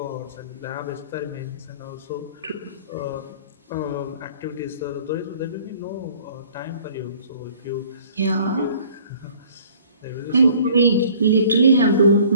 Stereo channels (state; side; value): inverted; both; correlation -0.53